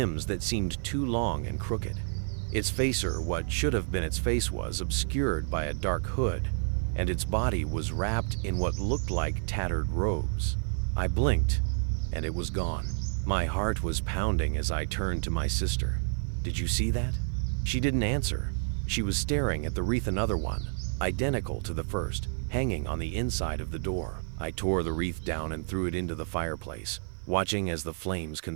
that seemed too long and crooked. Its face, or what should have been its face, was obscured by a dark hood, and its body was wrapped in what looked like tattered robes. I blinked, and it was gone. My heart was pounding as I turned to my sister. "Did you see that?" She didn't answer. She was staring at the wreath, another one, identical to the first, hanging on the inside of the door. I tore the wreath down and threw it into the fireplace. watching as the flames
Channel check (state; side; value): silent; left; 58 dB below the other